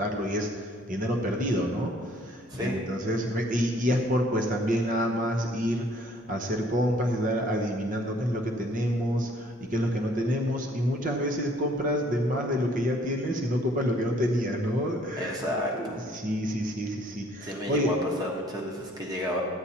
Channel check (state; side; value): normal; both; correlation 0.59